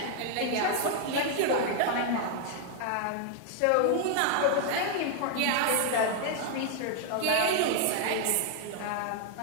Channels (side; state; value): both; different; correlation 0.00